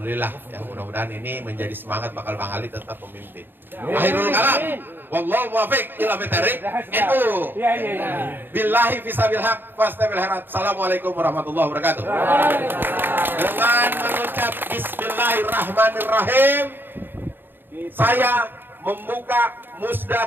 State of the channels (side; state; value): left; late; 0.098 ms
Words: Ya mudah-mudahan ini menjadi semangat bakal Bang Ali tetap memimpin. Akhirul kalam. Wallahu muwaffiq ila bitariq. Itu. Billahi fisabil haq fastabil harat. Assalamualaikum warahmatullahi wabarakatuh. Dengan mengucap bismillahirrahmanirrahim, saya membuka musda